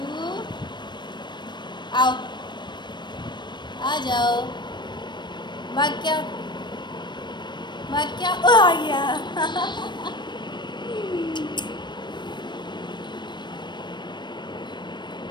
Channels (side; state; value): right; late; 0.22 ms